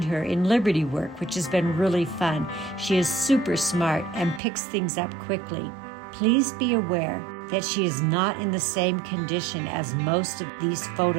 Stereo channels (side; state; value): left; drops out; at 4.4 s